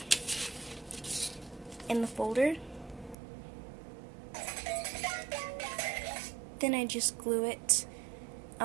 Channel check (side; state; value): left; drops out; at 3.2 s